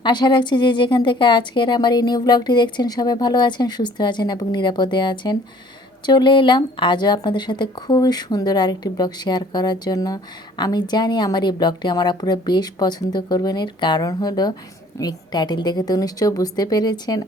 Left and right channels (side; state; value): both; normal; correlation 0.54